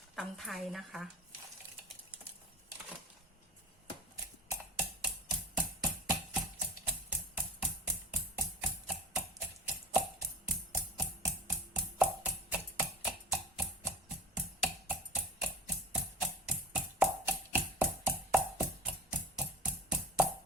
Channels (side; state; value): both; normal; correlation 0.37